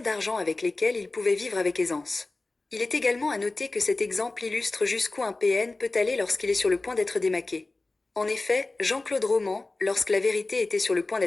d'argent avec lesquelles il pouvait vivre avec aisance. Il est également à noter que cet exemple illustre jusqu'où un PN peut aller lorsqu'il est sur le point d'être démaqué. En effet, Jean-Claude Roman, lorsque la vérité était sur le point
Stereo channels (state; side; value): quieter; right; 3.2 dB